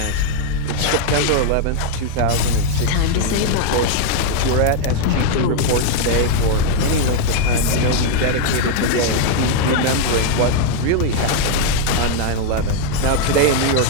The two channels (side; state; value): both; different; correlation 0.00